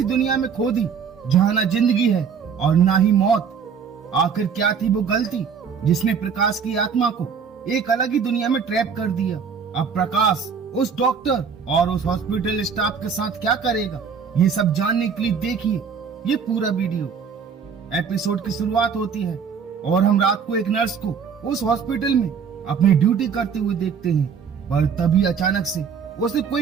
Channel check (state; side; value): quieter; left; 6.5 dB